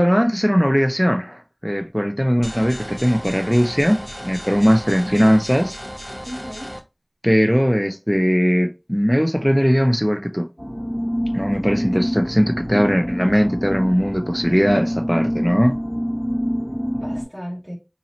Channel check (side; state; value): both; identical; correlation 1.00